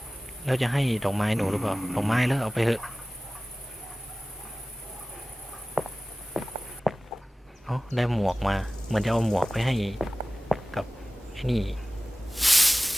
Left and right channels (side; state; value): both; normal; correlation 0.97